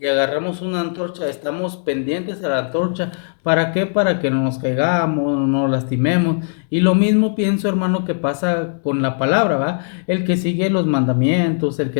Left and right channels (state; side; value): silent; right; 67 dB below the other